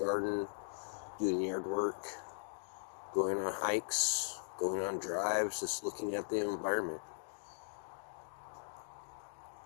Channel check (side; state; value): right; silent; digital silence